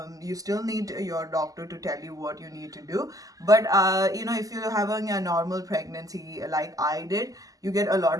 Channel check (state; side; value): late; left; 0.17 ms